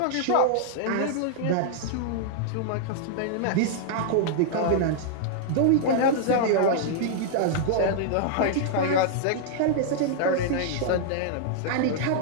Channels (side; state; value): both; different; correlation -0.01